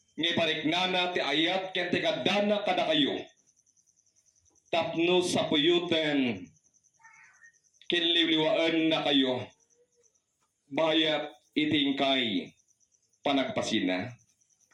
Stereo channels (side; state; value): both; identical; correlation 1.00